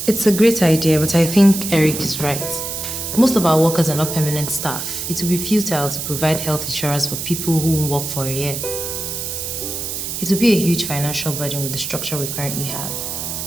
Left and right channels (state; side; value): noise; right; hiss, 5 dB below the sound